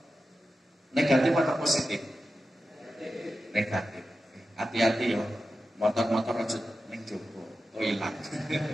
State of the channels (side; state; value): both; normal; correlation 0.92